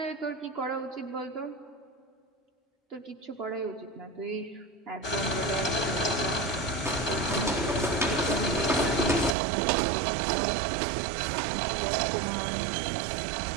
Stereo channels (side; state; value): left; drops out; at 9.3 s